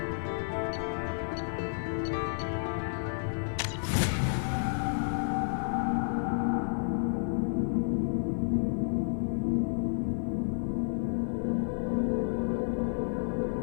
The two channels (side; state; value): right; silent; 57 dB below the other